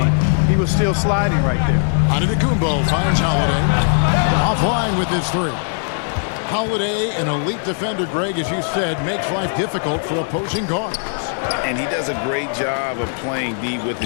he was still sliding right there. Antetokounmpo finds Holiday. Offline with his 3. Holiday, an elite defender, Greg, as you said, makes life difficult for opposing guards. And he does a great job of playing D with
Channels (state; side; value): silent; right; digital silence